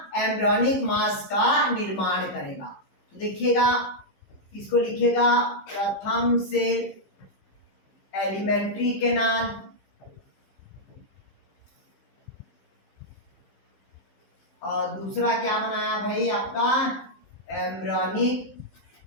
एम्ब्रियोनिक मास का निर्माण करेगा। तो देखिएगा, इसको लिखिएगा प्रथम से एलिमेंट्री कैनाल, और दूसरा क्या बनाया भाई आपका? Embryonic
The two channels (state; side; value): late; right; 15 ms